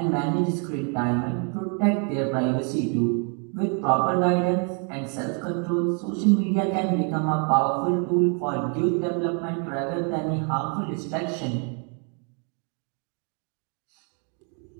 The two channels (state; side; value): quieter; left; 39.2 dB